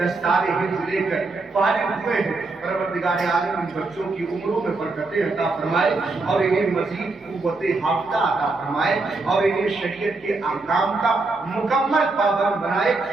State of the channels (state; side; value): quieter; left; 3.5 dB